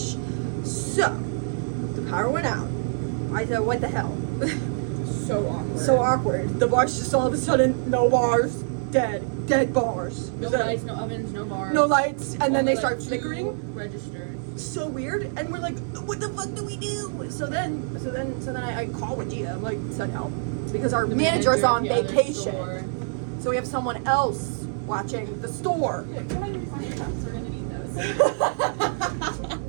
So, the power went out. I said, what the hell? So awkward. So awkward. The bars just all of a sudden, no bars, dead bars. No lights, no ovens, no bars. No lights, and then they start flickering. Registers. So weird, and we're like, what the fuck do we do? So then I call Wadia. I'm like, send help, because our manager's on vacation. So we have someone else watching the store. Yeah, come on, find your cups. We're gonna need those.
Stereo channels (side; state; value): left; silent; 61 dB below the other